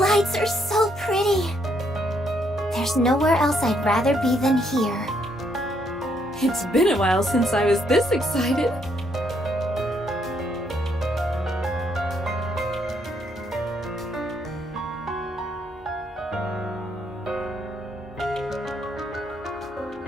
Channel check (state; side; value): normal; both; correlation 0.72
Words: are so pretty. There's nowhere else I'd rather be than here. It's been a while since I was this excited.